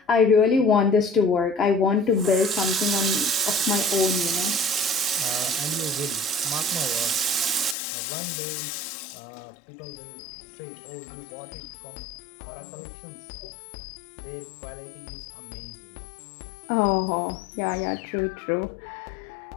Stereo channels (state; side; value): drops out; right; at 7.8 s